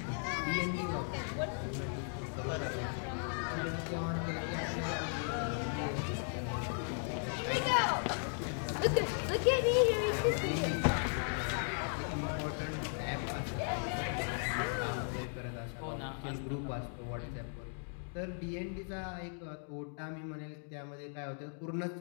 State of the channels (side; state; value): right; silent; 53 dB below the other